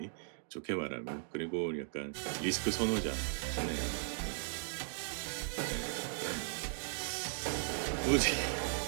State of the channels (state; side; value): silent; left; digital silence